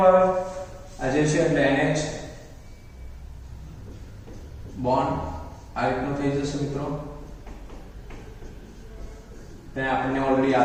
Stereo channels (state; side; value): identical; both; correlation 1.00